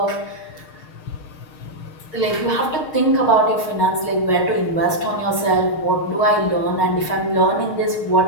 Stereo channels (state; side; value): late; right; 6.4 ms